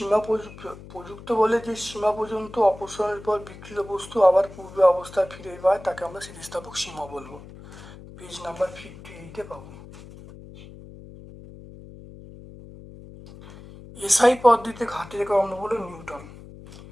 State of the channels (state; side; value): noise; left; hum, 17 dB below the sound